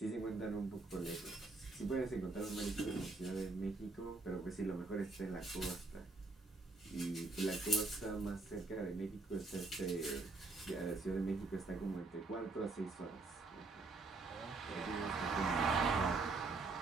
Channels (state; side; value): quieter; left; 3.4 dB